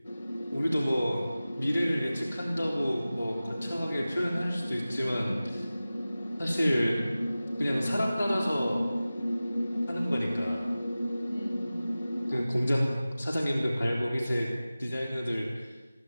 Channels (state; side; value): inverted; both; correlation -0.96